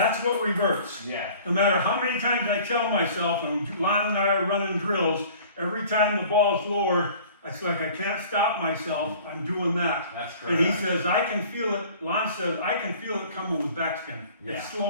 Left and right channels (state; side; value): inverted; both; correlation -0.48